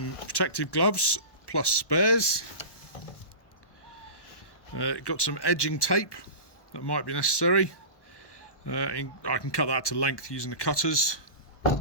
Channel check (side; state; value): right; late; 1.1 ms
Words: protective gloves plus spares, got some edging tape that might be necessary. I can cut that to length using the cutters.